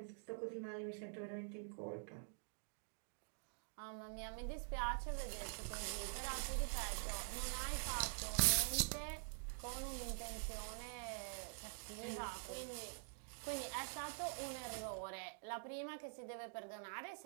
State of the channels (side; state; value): left; silent; digital silence